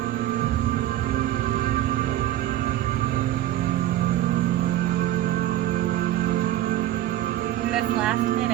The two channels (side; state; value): left; quieter; 13.5 dB